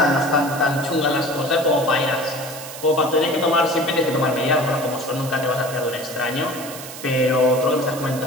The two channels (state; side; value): noise; right; hiss, 12 dB below the sound